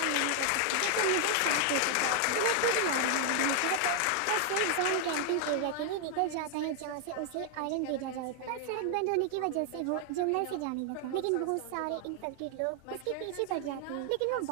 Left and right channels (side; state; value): both; different; correlation 0.00